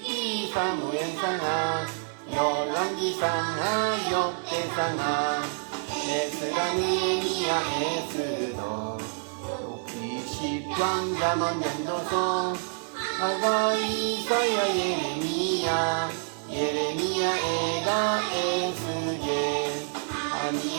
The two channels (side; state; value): left; silent; 59 dB below the other